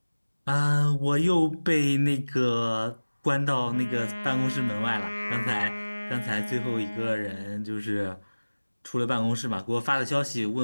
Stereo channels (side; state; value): both; inverted; correlation -1.00